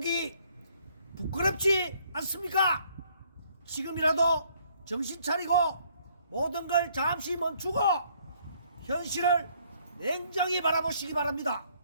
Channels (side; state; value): both; inverted; correlation -0.65